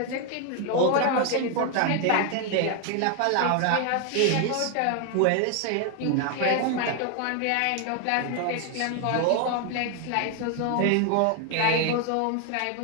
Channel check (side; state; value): both; different; correlation 0.01